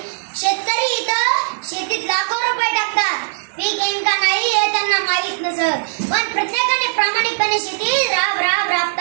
शेतकरी इथं शेतीत लाखो रुपये टाकतात, पीक येईल का नाही हे त्यांना माहीत नसत, पण प्रत्येकाने प्रामाणिकपणे शेती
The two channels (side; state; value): left; silent; digital silence